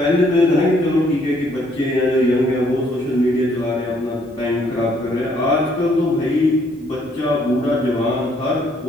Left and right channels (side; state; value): both; normal; correlation 0.67